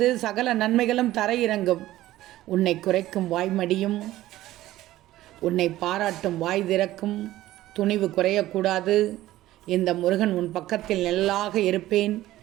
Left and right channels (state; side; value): quieter; left; 15.3 dB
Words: சகல நன்மைகளும் தர இறங்கும். உன்னை குறைக்கும் வாய்மடியும், உன்னை பாராட்டும் வாய் திறக்கும். துணிவு குறையக்கூடாது. இந்த முருகன் உன் பக்கத்தில் நெல்லாக இருப்பேன்.